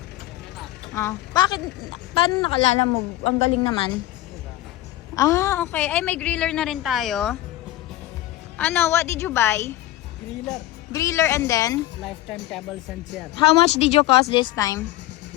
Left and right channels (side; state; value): right; quieter; 15.4 dB